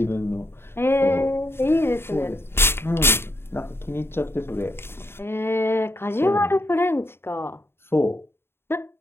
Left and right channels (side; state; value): right; late; 0.11 ms